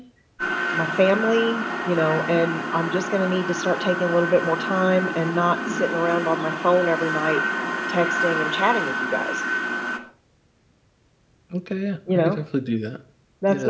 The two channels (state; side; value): identical; both; correlation 1.00